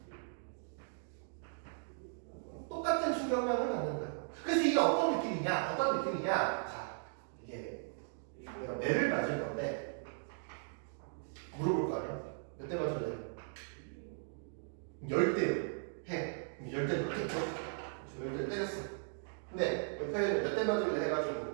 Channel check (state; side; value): silent; left; digital silence